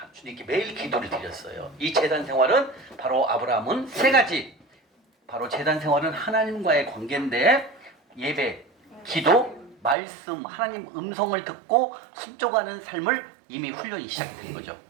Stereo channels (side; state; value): left; drops out; at 10.0 s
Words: 주님께 매일 기도를 드렸어요. 이 재단 생활은 바로 아브라함은 세 가지. 바로 재단 생활은 하나님과의 관계인데 예배, 기도, 말씀, 하나님 음성을 듣고 순종하는 삶을 이미 훈련이 시작된 거죠.